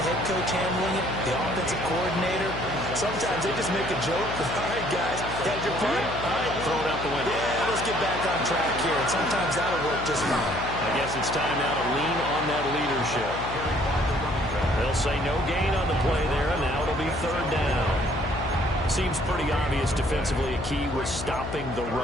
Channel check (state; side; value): noise; left; hum, 8 dB below the sound